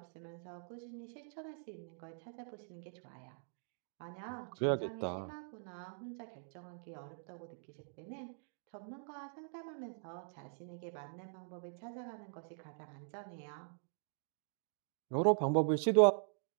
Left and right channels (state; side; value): silent; left; digital silence